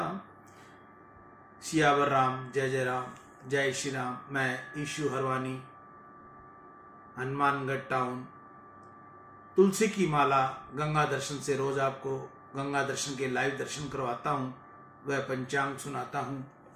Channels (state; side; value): identical; both; correlation 1.00